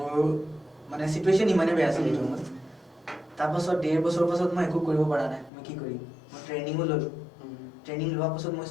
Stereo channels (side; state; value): right; drops out; at 5.5 s